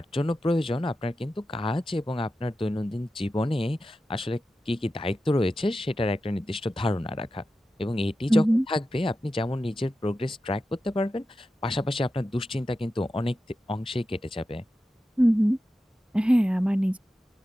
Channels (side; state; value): both; normal; correlation 0.92